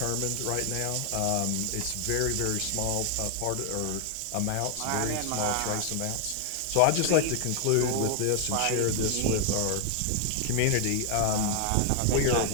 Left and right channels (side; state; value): both; different; correlation 0.00